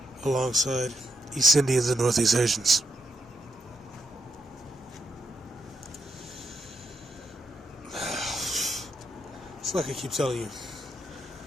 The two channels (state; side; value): normal; both; correlation 0.80